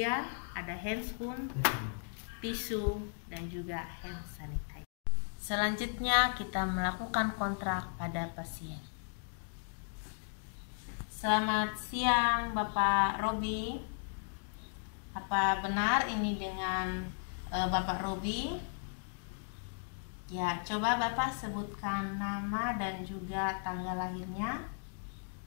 ada handspoon, tisu, dan juga hand sanitizer. Selanjutnya kita melakukan kontrak pada pasien. Selamat siang Bapak Robi. Apa benar ini dengan Bapak Robi? Ya, coba Bapak sebutkan nama dan juga tanggal lahirnya.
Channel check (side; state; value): right; silent; digital silence